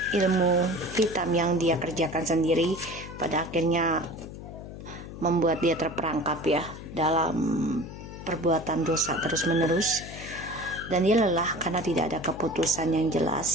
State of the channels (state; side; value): noise; left; hum, 12 dB below the sound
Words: ilmu hitam yang dia kerjakan sendiri, pada akhirnya membuat dia terperangkap ya dalam perbuatan dosa terus menerus. dan dia lelah karena tidak ada keputusan yang